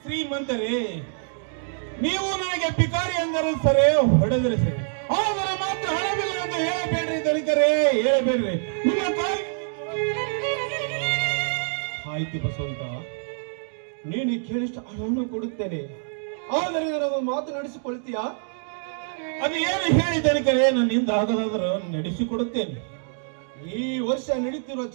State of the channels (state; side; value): silent; left; digital silence